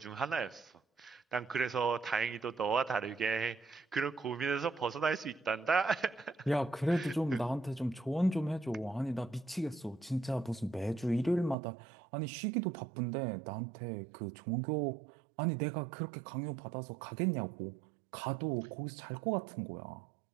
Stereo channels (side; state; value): left; drops out; at 11.6 s